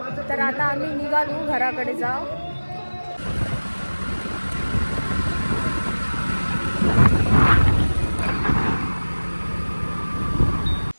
तर आता आम्ही निघालो घराकडे जाऊ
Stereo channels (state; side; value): inverted; both; correlation -1.00